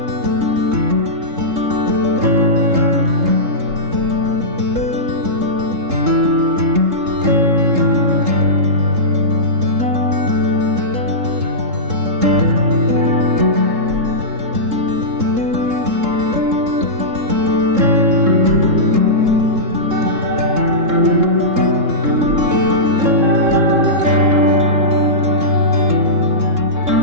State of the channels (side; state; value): left; late; 3.7 ms